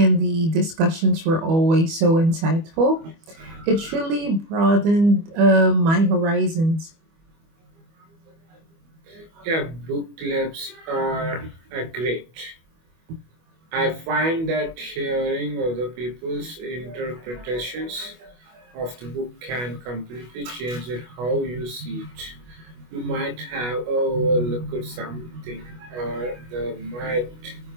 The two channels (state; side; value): late; left; 25 ms